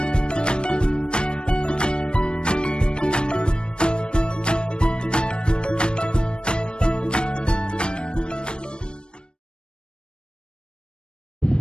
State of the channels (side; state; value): right; late; 0.052 ms